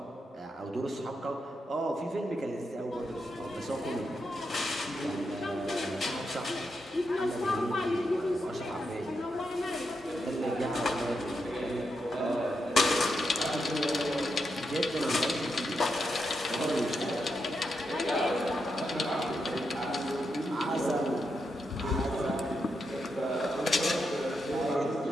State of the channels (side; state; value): both; normal; correlation 0.84